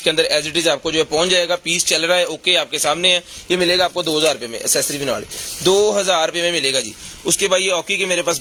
अंदर एज इट इज आपको जो है पहुंच जाएगा। पीस चल रहा है ओके, आपके सामने है। ये मिलेगा आपको 2000 रुपये में, एसेसरी भी नाल 2000 रुपये में मिलेगा जी। उसके बाद ये ऑकी के मेरे पास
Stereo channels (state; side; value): identical; both; correlation 1.00